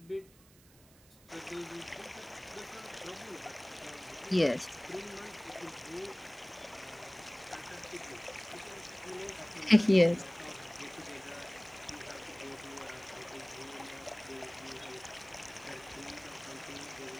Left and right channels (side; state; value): right; noise; hiss, 25 dB below the sound